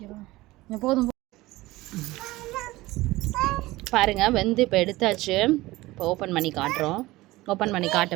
போதும் பாருங்கள். வெந்து இப்போ எடுத்தாச்சு. இப்போ ஓப்பன் பண்ணி காட்டுறோம். ஓப்பன் பண்ணி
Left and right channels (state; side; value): quieter; left; 19.0 dB